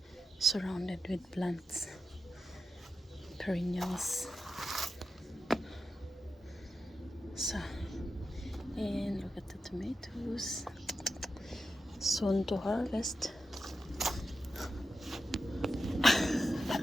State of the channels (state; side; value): normal; both; correlation 0.88